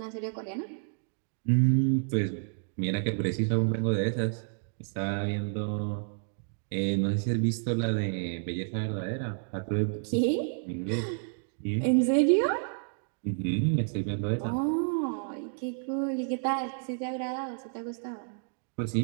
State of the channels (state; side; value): silent; left; digital silence